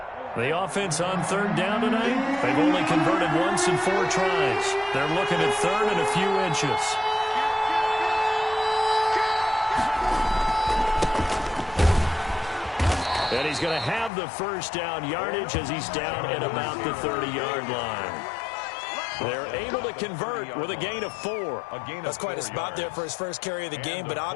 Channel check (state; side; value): drops out; right; at 14.1 s